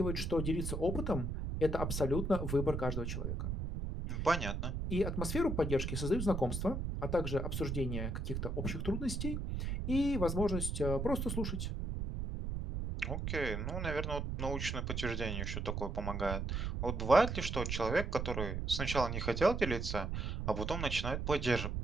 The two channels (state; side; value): noise; right; rumble, 2 dB below the sound